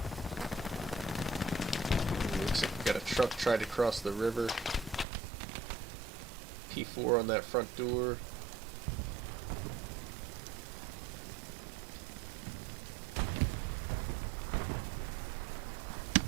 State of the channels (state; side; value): drops out; left; at 5.1 s